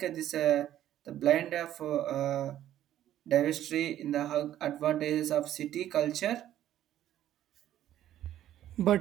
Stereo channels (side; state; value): left; quieter; 12.1 dB